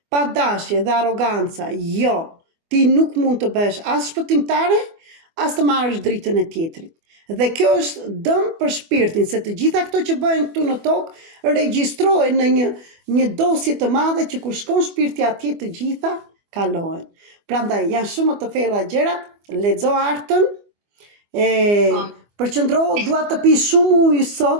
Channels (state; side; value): late; left; 24 ms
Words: pa dashje dhe arroganca, jo, ti nuk mund të bësh as shpëtimtare, as të marrësh dritën e tjetrit. Dhe kjo është dëm për shpirtin, se të gjitha këto që bëhen këtu në tokë regjistrohen në një dosje të madhe që kur shkon shpirti atje të gjitha kalohen. Prandaj janë shumë të thella gjërat, lexo artën, përqendrohu, dua të pi shumë ujë